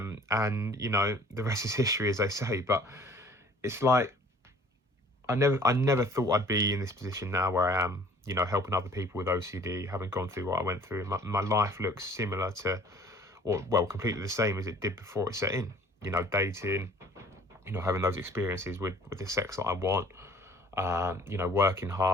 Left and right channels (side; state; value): both; normal; correlation 0.52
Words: the rest is history, as they say. But it's like I never thought I'd be in this position now where I am. Helping other people with OCD, having gone through what I went through. My life looks similar to, or well, completely the same as it did before it set in. Dating, having those experiences with the sex that I want, working